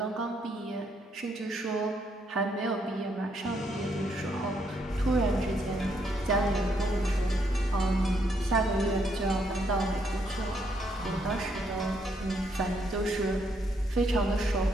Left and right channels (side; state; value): both; normal; correlation 0.74